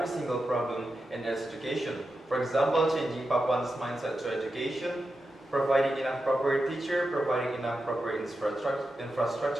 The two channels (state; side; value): normal; both; correlation 0.89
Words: single problem in education. For example, changing Papuans' mindset to education, providing enough proper teacher, providing enough proper